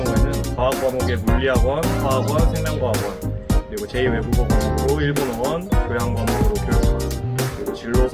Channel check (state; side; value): identical; both; correlation 1.00